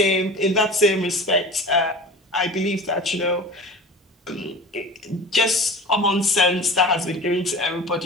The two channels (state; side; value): normal; both; correlation 0.37